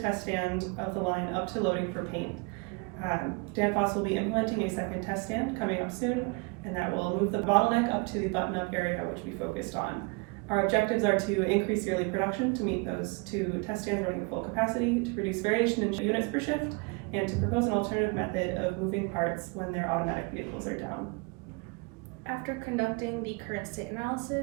stand of the line up to loading for paint. Danfoss will be implementing a second test stand coming up soon, and that will move the bottleneck up to the button-up area, which we focused on. Our objectives are to increase yearly production to meet those two test stands running at full capacity, to reduce variation in units per shift, and to propose an alternative method of moving parts when their automatic vehicles are down. After conducting the current state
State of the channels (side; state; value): left; quieter; 30.1 dB